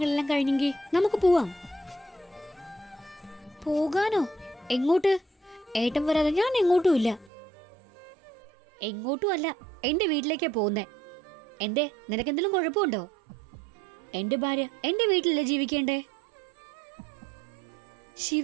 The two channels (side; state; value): left; drops out; at 7.3 s